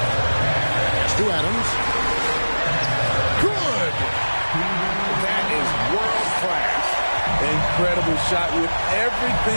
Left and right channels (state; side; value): inverted; both; correlation -1.00